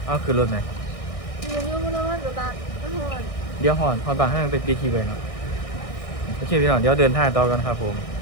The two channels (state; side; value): late; right; 1.6 ms